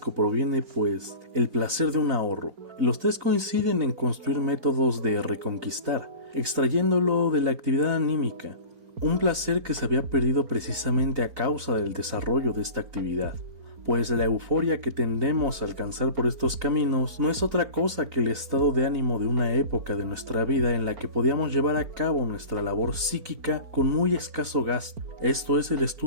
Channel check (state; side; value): late; left; 4.4 ms